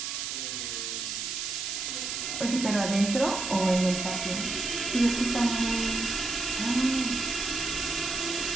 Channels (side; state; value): right; noise; hiss, 3 dB below the sound